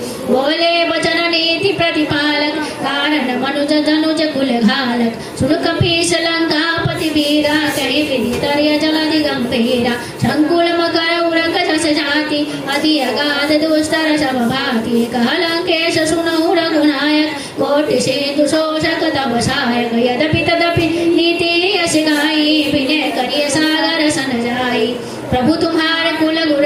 बोले वचन नीति प्रतिपालक, कारण मनुज धनुज कुल घालक। सुन कपीस लंकापति वीरा, कहि विधि तर्य जलधि गंभीरा। संकुल मकर उरक जस जाति, अति अगाध दुस्तर सब भाति। कह लंकेश सुनहु रघुनायक, कोटि सिंधु शोषक तब सहायक। यद्यपि तदपि नीति यश गाई, विनय करिय सागर सन जाई। प्रभु तुम्हारे कुल गुर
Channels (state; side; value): identical; both; correlation 1.00